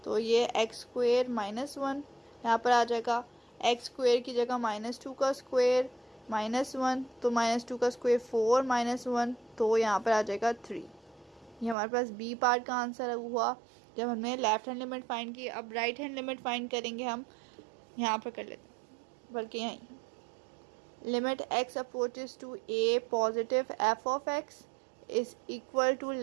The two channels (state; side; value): drops out; left; at 11.8 s